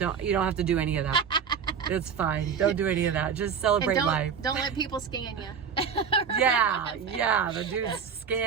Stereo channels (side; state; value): left; quieter; 6.9 dB